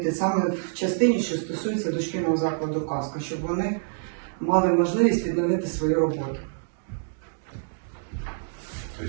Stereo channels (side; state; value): left; silent; digital silence